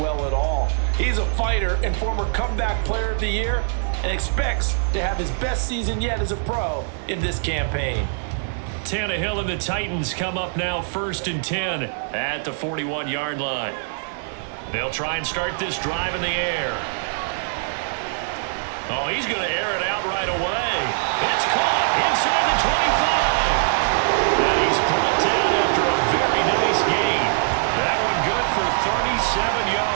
at all. He's a fighter and former comeback player of the year, and expects to have his best season yet as a pro in this campaign. Tannehill and the Titans come up now 1st and 10 at the 41-yard line. They'll try and start this drive in the air. Oh, he's going to air it out right away. It's caught inside the 25. And he's brought down after a very nice gain. That one good for 37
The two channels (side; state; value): left; silent; digital silence